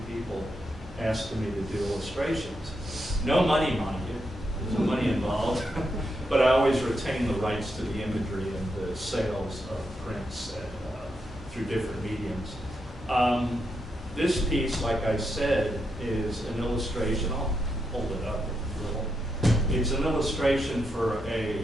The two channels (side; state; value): both; normal; correlation 0.83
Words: people asking me to do illustrations. No money, mind you. There's no money involved. But I always retain the rights to the imagery and the sales of prints through different mediums. This piece, like I said, is an illustration. I'll hold it up a little. It's an illustration for